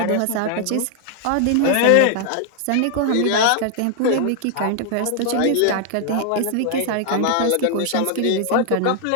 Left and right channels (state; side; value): different; both; correlation 0.00